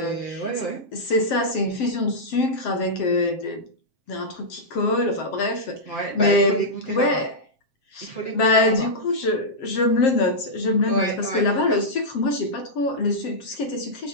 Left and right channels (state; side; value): late; right; 7.6 ms